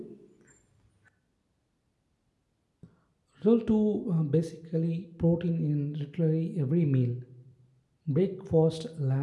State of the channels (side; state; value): both; identical; correlation 1.00